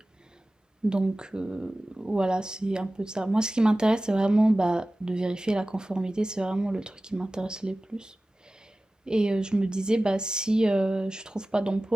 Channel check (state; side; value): normal; both; correlation 0.97